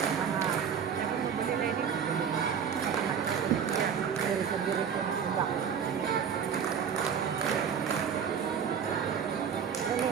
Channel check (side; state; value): left; quieter; 7.4 dB